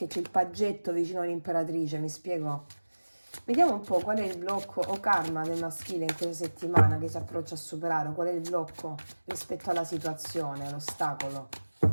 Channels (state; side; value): inverted; both; correlation -1.00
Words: c'è il paggetto vicino all'imperatrice, mi spiego? Vediamo un po' qual è il blocco o karma del maschile in questa settimana che si approccia a superare, qual è il blocco rispetto alla situazione, l'ostacolo.